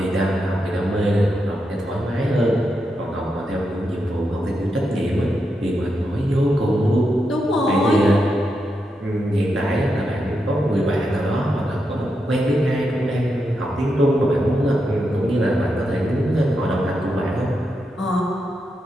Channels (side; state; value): both; normal; correlation 0.85